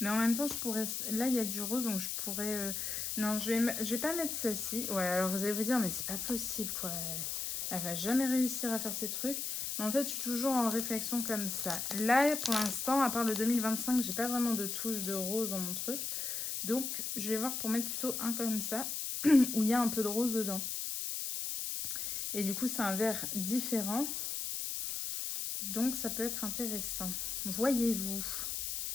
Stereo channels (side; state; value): left; noise; hiss, 3 dB below the sound